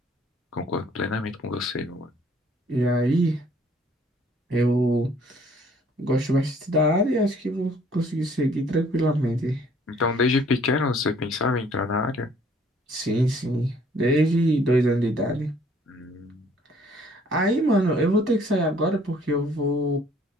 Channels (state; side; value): normal; both; correlation 0.59